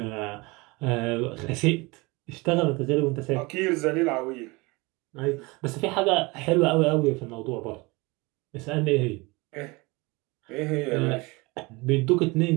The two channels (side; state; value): left; quieter; 24.9 dB